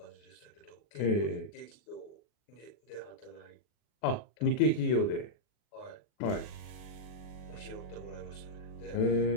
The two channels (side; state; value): right; late; 40 ms